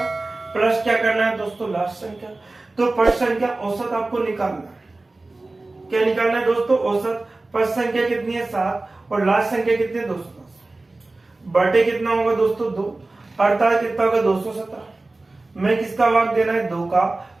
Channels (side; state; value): left; quieter; 3.1 dB